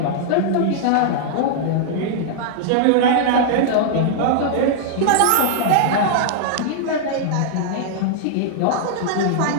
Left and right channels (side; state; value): both; different; correlation -0.01